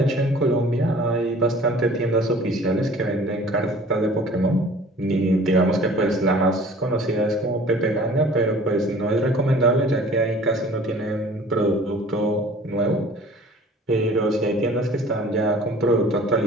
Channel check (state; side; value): normal; both; correlation 0.48